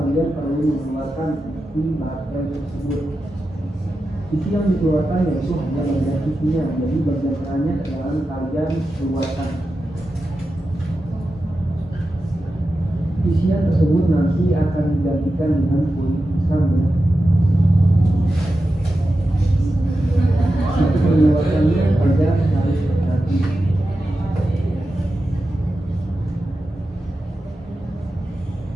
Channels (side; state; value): both; normal; correlation 0.91